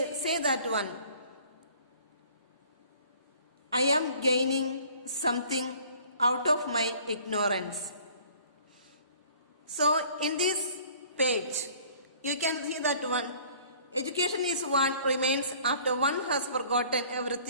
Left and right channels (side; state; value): both; inverted; correlation -0.53